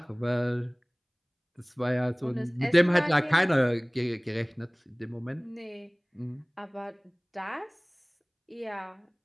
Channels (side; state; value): both; identical; correlation 1.00